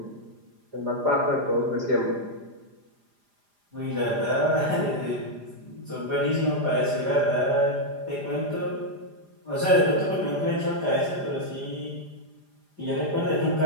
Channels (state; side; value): late; left; 4.9 ms